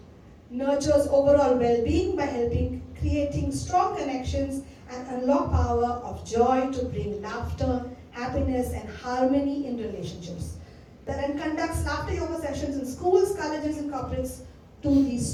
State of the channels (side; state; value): both; identical; correlation 1.00